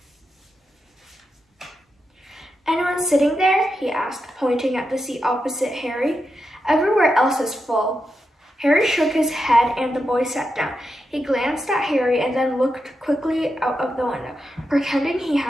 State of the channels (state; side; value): normal; both; correlation 0.87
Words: Anyone sitting there? He asked, pointing at the seat opposite Harry. Everywhere else is full. Harry shook his head and the boy sat down. He glanced at Harry and then looked quickly out of the window, pretending he